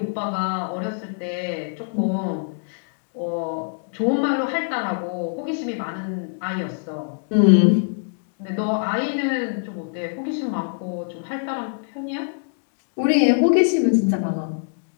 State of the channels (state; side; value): silent; right; digital silence